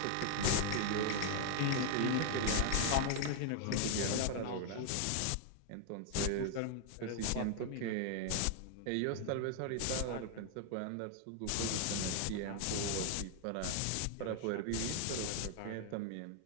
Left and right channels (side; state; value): both; different; correlation 0.00